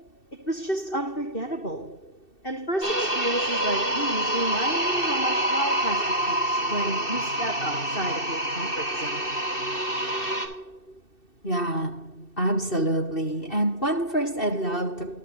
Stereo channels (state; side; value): late; right; 2.7 ms